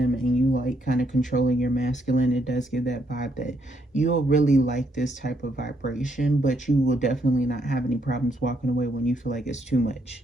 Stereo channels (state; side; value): normal; both; correlation 0.74